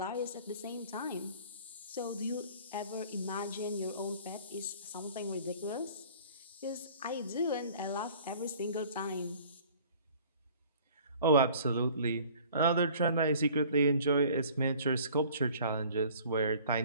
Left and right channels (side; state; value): both; inverted; correlation -0.50